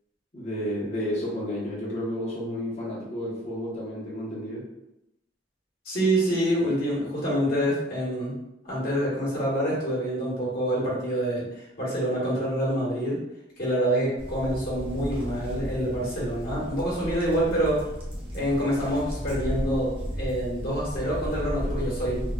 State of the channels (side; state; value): both; normal; correlation 0.52